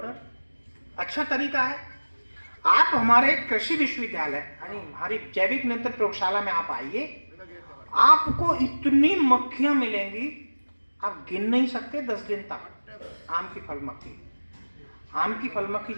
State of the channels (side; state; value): both; inverted; correlation -1.00